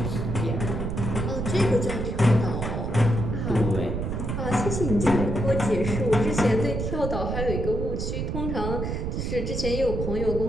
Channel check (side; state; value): right; noise; rumble, 2 dB below the sound